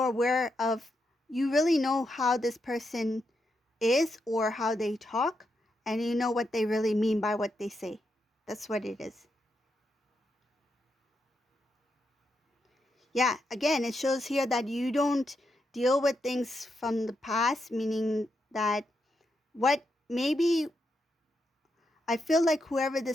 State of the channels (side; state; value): both; normal; correlation 0.83